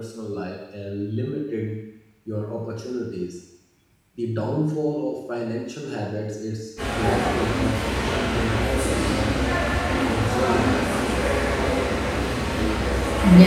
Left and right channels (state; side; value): identical; both; correlation 1.00